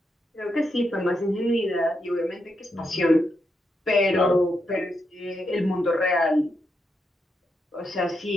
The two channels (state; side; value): normal; both; correlation 0.83